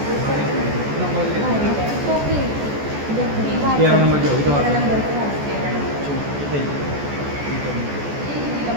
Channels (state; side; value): late; left; 14 ms